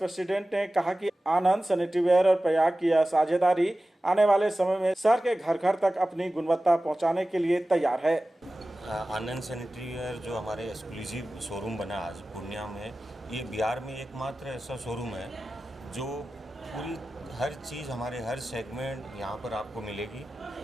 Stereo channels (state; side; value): normal; both; correlation 0.95